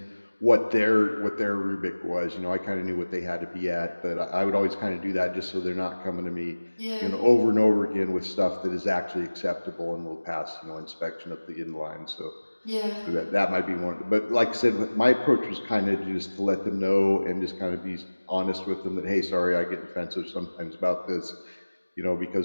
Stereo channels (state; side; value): inverted; both; correlation -1.00